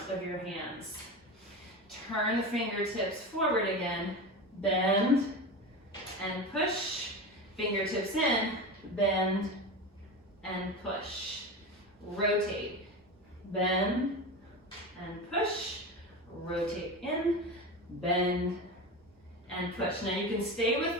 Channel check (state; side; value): normal; both; correlation 0.25